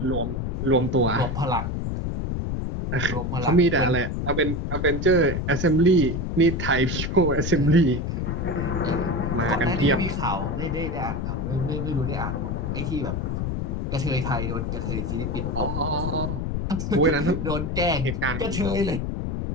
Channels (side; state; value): left; noise; rumble, 2 dB below the sound